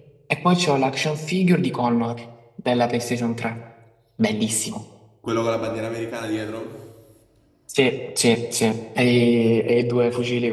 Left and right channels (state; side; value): identical; both; correlation 1.00